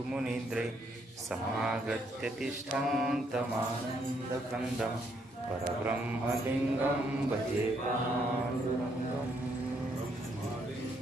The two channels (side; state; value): both; normal; correlation 0.72